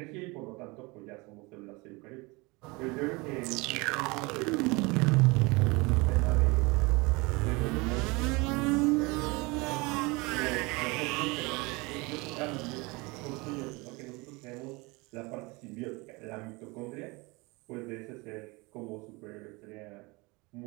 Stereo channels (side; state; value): left; quieter; 25.5 dB